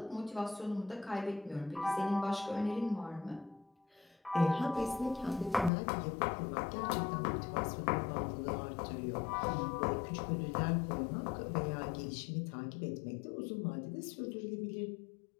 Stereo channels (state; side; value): drops out; right; at 5.7 s